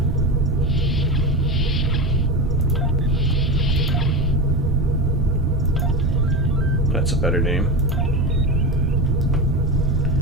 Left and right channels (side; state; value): both; normal; correlation 0.21